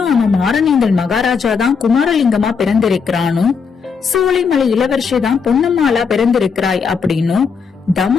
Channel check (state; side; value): quieter; right; 5.8 dB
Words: அவன் மாரணேந்தல் மகாராஜா தான் குமாரலிங்கமா பிறந்திருக்கிறானோ, சோலைமலை இளவரசி தான் பொன்னம்மாளா பிறந்திருக்கிறாய் அப்படின்னு